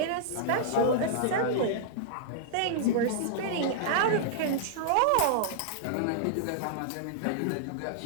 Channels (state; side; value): different; both; correlation -0.02